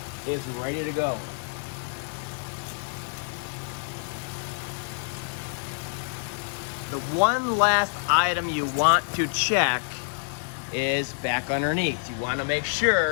is ready to go. The one last item you want to check is back underneath. You want to make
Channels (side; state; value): right; silent; 58 dB below the other